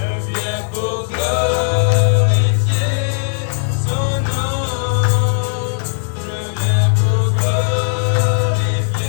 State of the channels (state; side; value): silent; right; digital silence